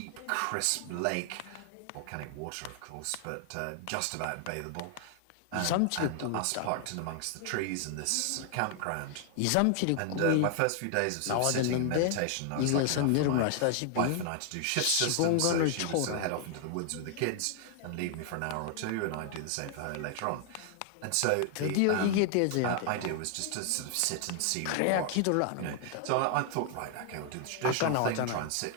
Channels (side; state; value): both; different; correlation 0.00